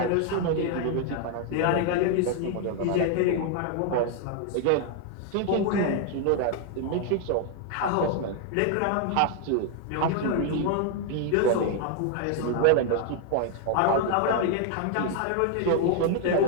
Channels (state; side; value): different; both; correlation 0.00